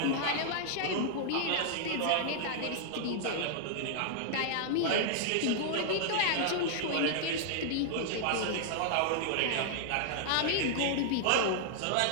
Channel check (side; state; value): both; different; correlation -0.01